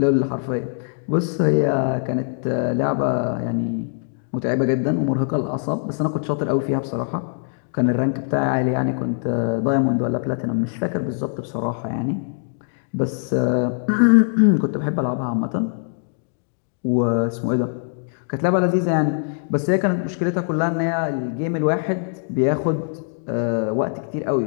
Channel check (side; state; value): right; silent; digital silence